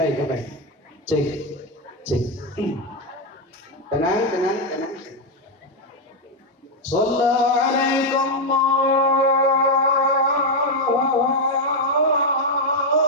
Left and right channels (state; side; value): normal; both; correlation 0.03